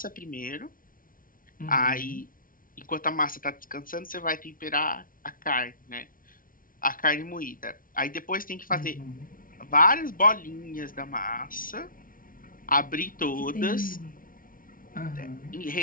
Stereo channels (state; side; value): late; right; 0.40 ms